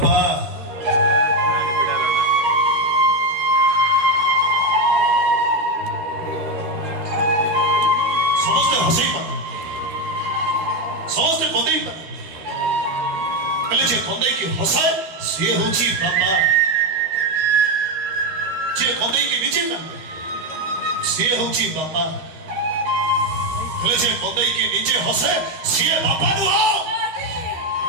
समझते हंसे ही पाता समझते कंदे ही पाता पहले जे कंदे की हंसाए से होची बापा जे कंदे की नीचे कांदे से होची बापा पहले जे कंदे की नीचे हंसे से बापा नु आओ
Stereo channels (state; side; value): late; left; 13 ms